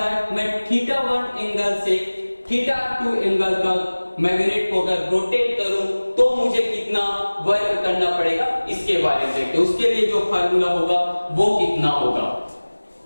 मैं θ1 एंगल से θ2 एंगल तक मैग्नेट को अगर रोटेट करूं तो मुझे कितना वर्क करना पड़ेगा, इसके बारे में देखते हैं। उसके लिए जो फार्मूला होगा वो कितना होगा,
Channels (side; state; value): both; inverted; correlation -1.00